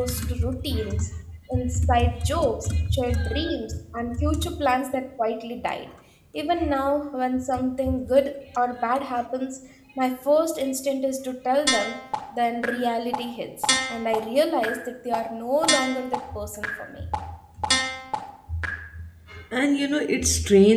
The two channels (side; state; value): both; identical; correlation 1.00